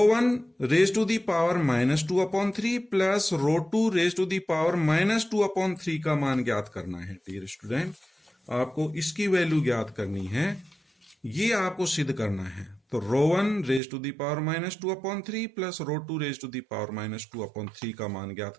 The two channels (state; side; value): drops out; left; at 13.8 s